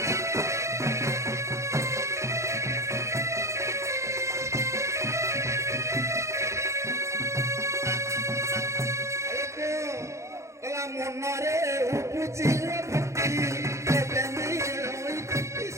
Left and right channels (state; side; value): late; left; 0.14 ms